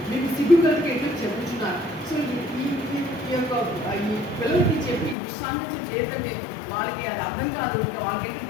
మీకు సిగ్గు కలిగి ఎట్లా చెప్పుచున్నారు. సో ఈ యొక్క ఈ పిల్లలకి చెప్పి దుస్సాంగత్యం చేయటమే వాళ్ళకి అది అర్థం కాదు. ఇంకా వాళ్ళకి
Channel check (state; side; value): drops out; right; at 5.2 s